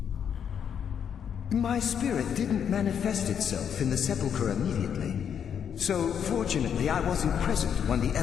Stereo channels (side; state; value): right; quieter; 8.1 dB